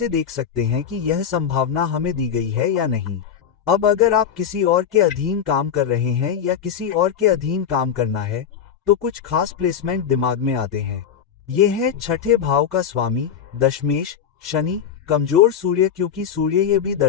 देख सकते हैं कि यह संभावना हमें दी गई है या नहीं। अब अगर आप किसी और के अधीन काम कर रहे हैं या किसी और के अधीन काम करना है, तो कुछ खास प्लेसमेंट दिमाग में आते हैं। ये है छठे भाव का स्वामी दशमेश शनि, कमजोर सूर्य, क्योंकि सूर्य ये भी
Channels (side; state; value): right; quieter; 8.1 dB